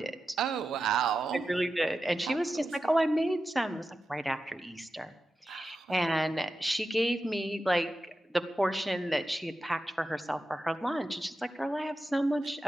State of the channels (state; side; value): normal; both; correlation 0.90